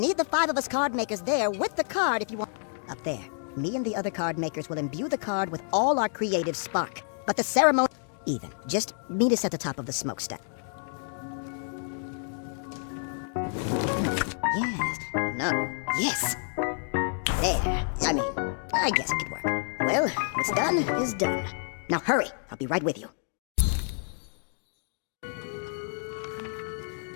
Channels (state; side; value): silent; right; 59 dB below the other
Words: the 5 of us card makers there with the card if you want... Up there. Me and the other card makers will imbue the card with all our creative spark. But the ceremony... Even. Just meet us at the top of the smokestack. Yes. No. Yes. There. I guess it could work. Well, what's done is done. Now hurry. I'll be right with you.